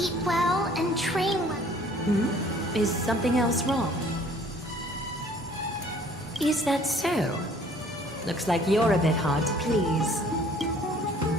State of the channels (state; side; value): normal; both; correlation 0.56